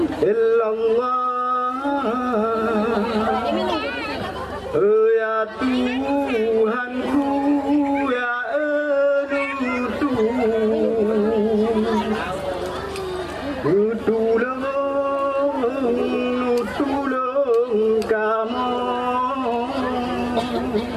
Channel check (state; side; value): identical; both; correlation 1.00